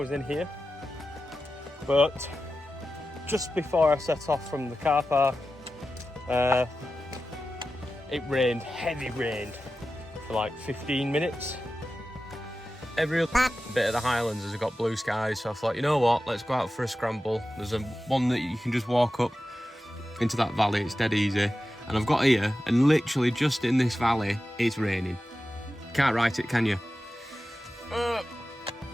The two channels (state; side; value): normal; both; correlation 0.93